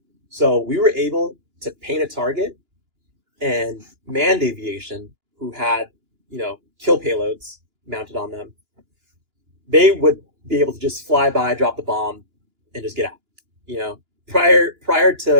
So we were able to paint a target, and manned aviation, who had, kill payloads mounted on them, they would be able to just fly by, drop the bomb, and just get out. Prior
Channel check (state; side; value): late; left; 2.9 ms